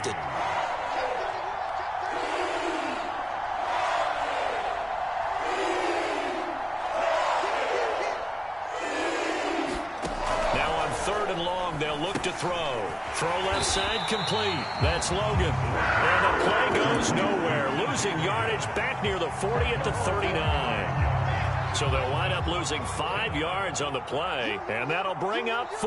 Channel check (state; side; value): identical; both; correlation 1.00